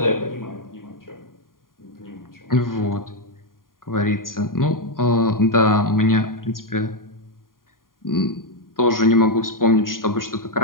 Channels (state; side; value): late; right; 0.91 ms